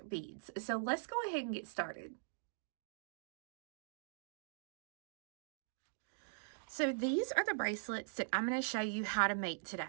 beads. So let's go ahead and get started. So these are the bracelets that I'm going to show you how to make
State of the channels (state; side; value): silent; left; digital silence